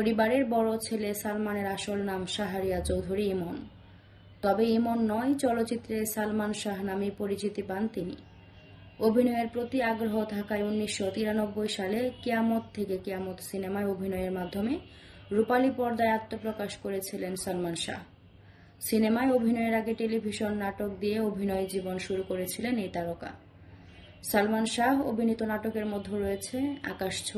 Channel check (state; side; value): identical; both; correlation 1.00